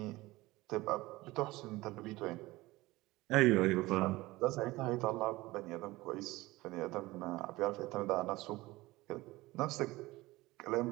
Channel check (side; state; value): left; quieter; 19.7 dB